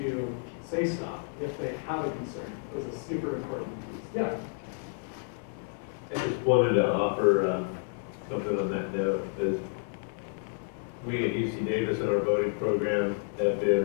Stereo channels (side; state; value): right; silent; 58 dB below the other